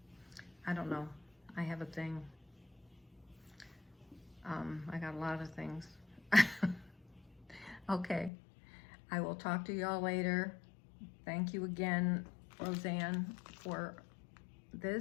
I don't know. I have a thing. I got a lot of things. Okay, I will talk to y'all later. Thank you again, Roseanne, for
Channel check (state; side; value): drops out; right; at 8.3 s